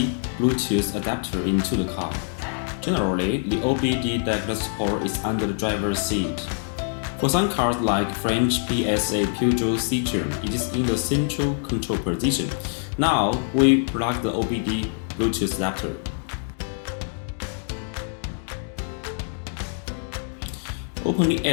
Bluetooth adapter into the car. Generally, the OBD diagnose port is under the driver's seat. For some cars like French PSA Peugeot Citroën, it is in the central control position. Now, we plug the OBD Bluetooth adapter. Open the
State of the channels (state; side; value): silent; right; 62 dB below the other